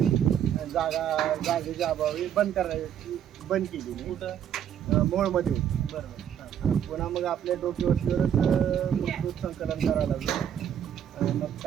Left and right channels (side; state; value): left; quieter; 9.5 dB